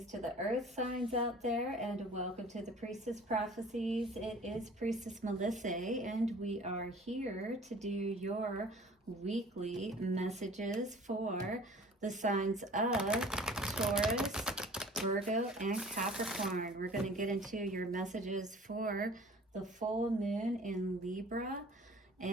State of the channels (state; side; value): normal; both; correlation 0.48